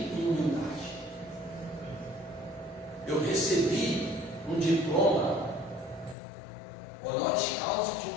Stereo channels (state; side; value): drops out; right; at 6.2 s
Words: em humildade. Eu recebi um diploma honoris causa de